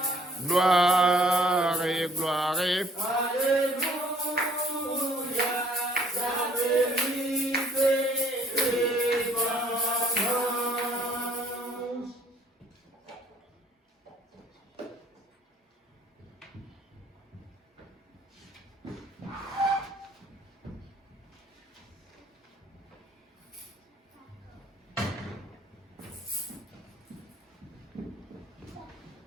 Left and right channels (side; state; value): both; normal; correlation 0.60